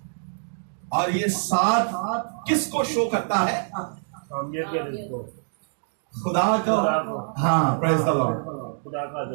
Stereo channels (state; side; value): silent; left; digital silence